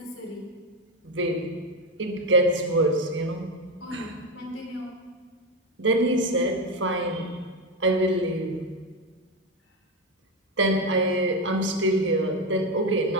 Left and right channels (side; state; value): both; normal; correlation 0.13